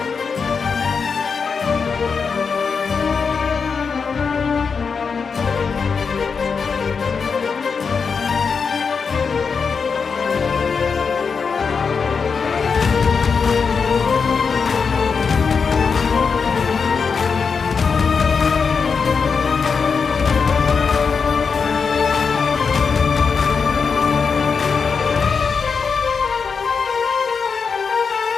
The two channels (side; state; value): right; quieter; 5.6 dB